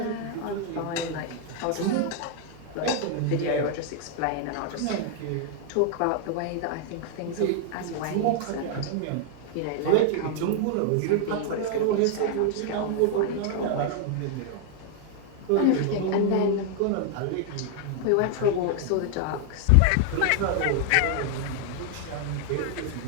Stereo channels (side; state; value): both; different; correlation 0.00